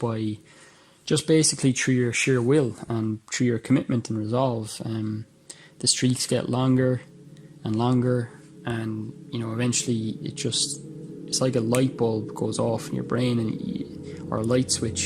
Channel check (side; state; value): both; identical; correlation 1.00